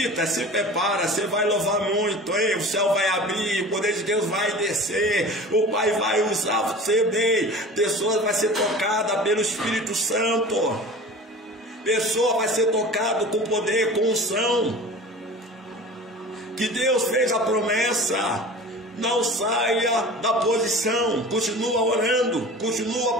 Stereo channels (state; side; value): normal; both; correlation 0.38